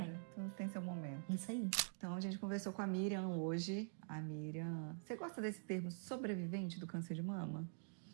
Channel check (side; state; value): left; silent; digital silence